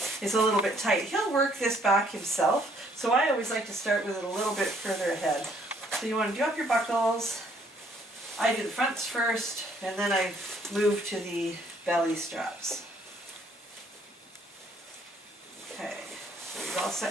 it's a little bit tight. He'll work this back himself, so I always like to start with it a little bit further ahead. So you want to do up your buckles. I do the fronts first, and then I move to the belly straps. Okay. is all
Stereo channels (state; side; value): normal; both; correlation 0.65